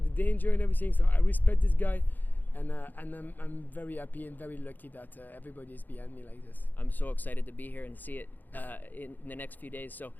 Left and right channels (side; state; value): right; late; 0.086 ms